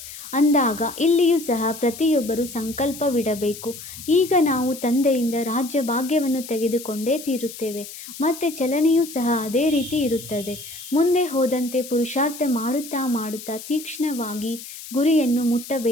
ಅಂದಾಗ ಇಲ್ಲಿಯೂ ಸಹ ಪ್ರತಿಯೊಬ್ಬರೂ ಸಂಕಲ್ಪವಿಡಬೇಕು. ಈಗ ನಾವು ತಂದೆಯಿಂದ ರಾಜ್ಯ ಭಾಗ್ಯವನ್ನು ತೆಗೆದುಕೊಂಡೇ ತೀರುತ್ತೇವೆ. ಮತ್ತೆ ಚಲನೆಯೂ ಸಹ ಅದೇ ರೀತಿ ಇರುತ್ತದೆ. ಮುಂದೆ ಹೋದಂತೆ ಪುರುಷಾರ್ಥ ಮಾಡುತ್ತಾ ಮಾಡುತ್ತಾ ತೀಕ್ಷ್ಣವಾಗಿ ಗುರಿಯನ್ನು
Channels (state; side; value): noise; left; hiss, 13 dB below the sound